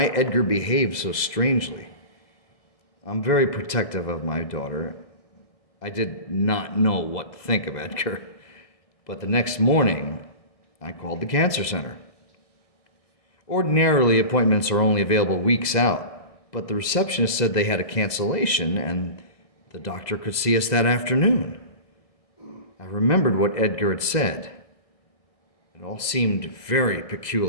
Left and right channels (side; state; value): right; late; 1.6 ms